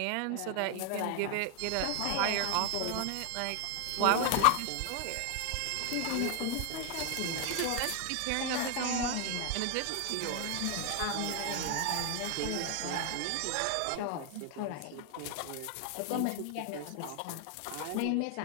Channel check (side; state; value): both; different; correlation 0.00